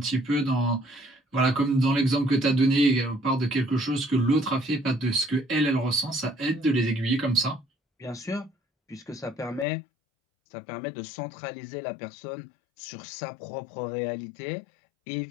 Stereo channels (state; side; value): drops out; right; at 9.7 s